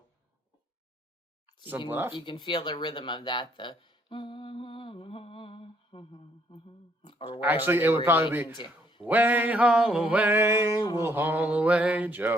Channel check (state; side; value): normal; both; correlation 0.68